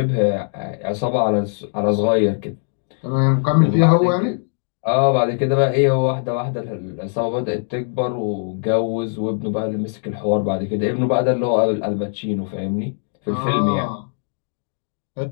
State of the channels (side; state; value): right; silent; digital silence